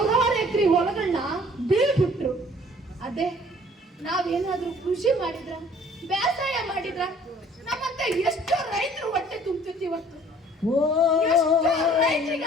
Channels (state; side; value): normal; both; correlation 0.54